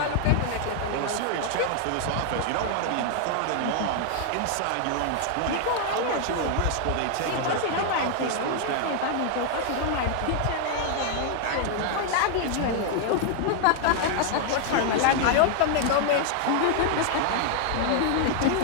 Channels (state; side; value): different; both; correlation 0.00